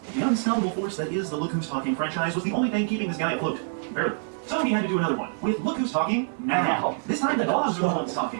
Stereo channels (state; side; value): silent; left; digital silence